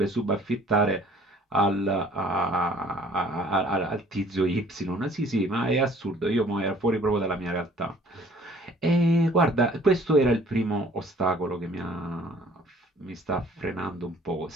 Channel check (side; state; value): both; normal; correlation 0.54